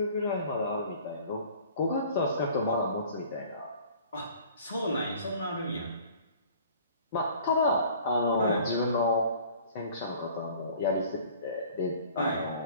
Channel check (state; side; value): inverted; both; correlation -0.50